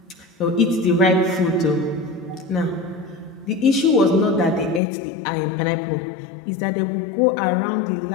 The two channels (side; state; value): right; drops out; at 4.8 s